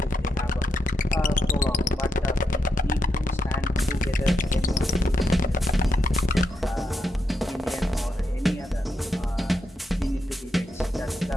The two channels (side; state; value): both; normal; correlation 0.82